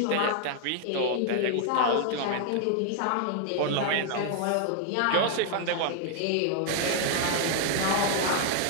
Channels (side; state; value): both; different; correlation 0.00